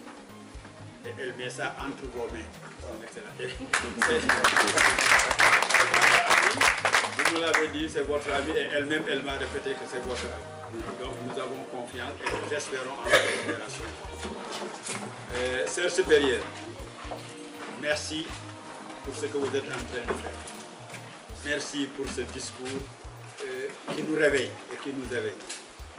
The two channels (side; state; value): both; identical; correlation 1.00